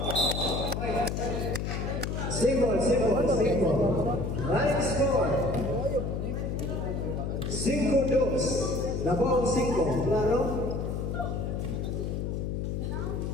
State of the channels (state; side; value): noise; left; hum, 2 dB below the sound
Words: Simple. Right score. 5-2. Labang 5. Claro?